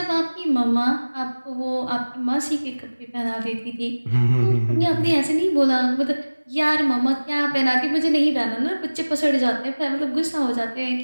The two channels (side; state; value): both; inverted; correlation -1.00